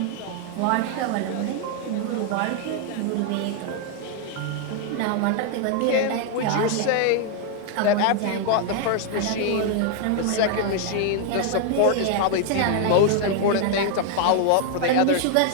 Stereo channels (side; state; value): both; different; correlation 0.00